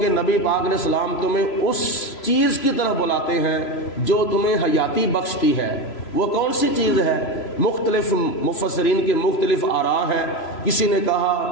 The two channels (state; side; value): late; right; 3.0 ms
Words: نبی پاک علیہ السلام تمہیں اس چیز کی طرف بلاتے ہیں جو تمہیں حیاتی بخشتی ہے۔ وہ کون سی چیز ہے؟ مختلف مفسرین کے مختلف آراء ہیں۔ کسی نے